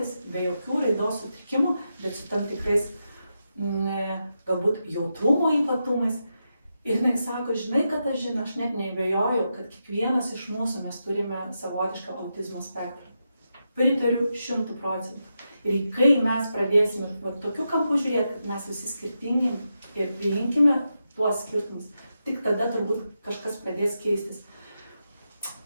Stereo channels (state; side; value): inverted; both; correlation -0.87